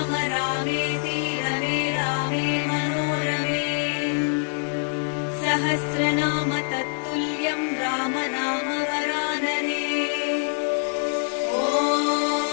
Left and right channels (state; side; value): silent; right; digital silence